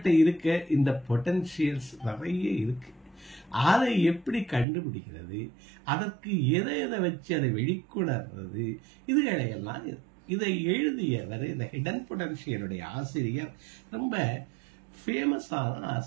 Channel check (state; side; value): drops out; left; at 4.7 s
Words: இருக்க இந்த பொட்டன்ஷியல்ஸ் நிறைய இருக்கு. அதை எப்படி கண்டுபிடிக்கிறது, அதற்கு எதை எதை வச்சு அதை வெளிக்கொணர்றது, இதுகளையெல்லாம் இதை எழுதியவர் இந்த ஹிடன் பொட்டன்ஷியலுடைய ஆசிரியர் ரொம்ப ஃபேமஸான